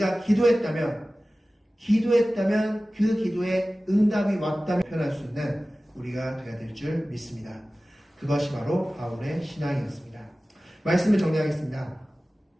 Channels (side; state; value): both; normal; correlation 0.97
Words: 기도했다면 그 기도에 응답이 왔다면 표현할 수 있는 우리가 되어야 될 줄 믿습니다. 그것이 바로 바울의 신앙이었습니다. 말씀을 정리하겠습니다.